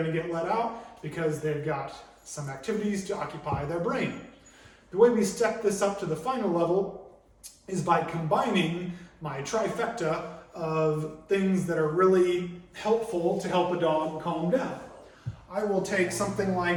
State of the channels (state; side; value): identical; both; correlation 1.00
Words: to get let out because they've got some activities to occupy their brain. The way we step this up to the final level is by combining my trifecta of things that are really helpful to help a dog calm down. I will take something